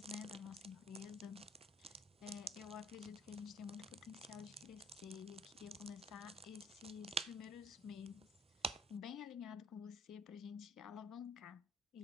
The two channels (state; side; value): normal; both; correlation 0.56